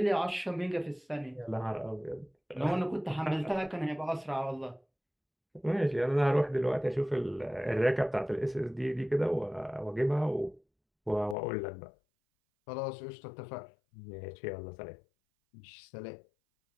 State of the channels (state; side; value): drops out; right; at 11.4 s